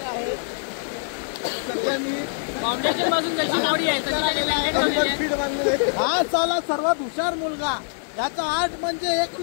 आहे. सध्या मी फाउंडेशन पासून त्याची बॉडी आहे. हा साला सर्वात हुशार मुलगा. याचा आर्ट म्हणजे एक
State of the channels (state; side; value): silent; right; digital silence